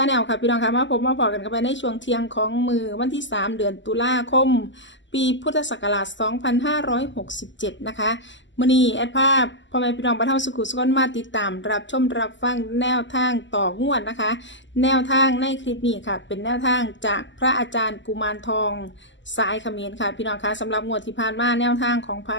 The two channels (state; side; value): late; right; 0.54 ms